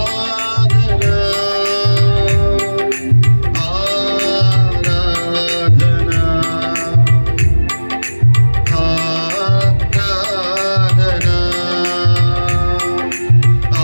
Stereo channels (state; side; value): inverted; both; correlation -1.00